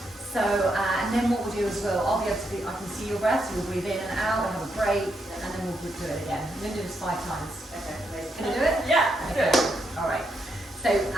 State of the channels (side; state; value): both; normal; correlation 0.79